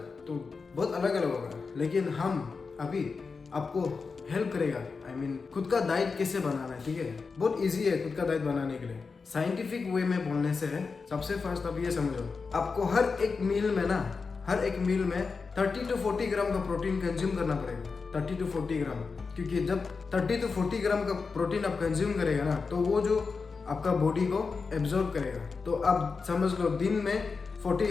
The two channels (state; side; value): quieter; right; 4.8 dB